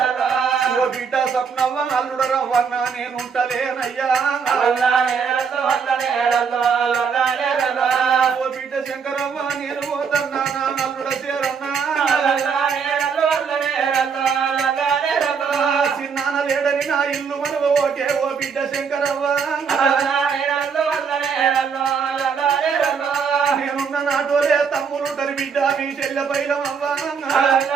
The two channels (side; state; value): left; quieter; 6.2 dB